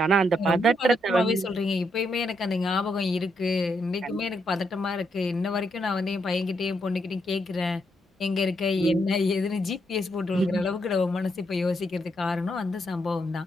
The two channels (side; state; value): both; normal; correlation 0.78